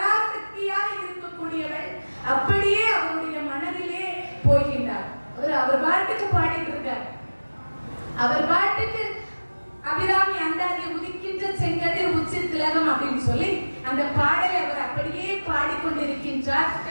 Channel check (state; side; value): inverted; both; correlation -1.00